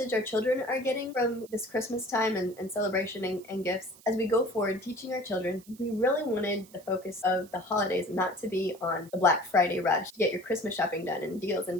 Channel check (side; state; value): right; noise; hiss, 24 dB below the sound